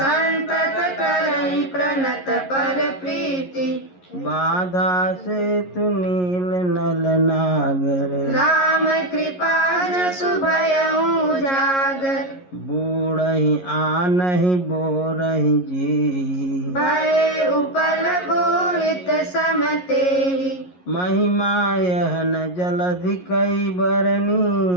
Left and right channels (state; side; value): late; right; 11 ms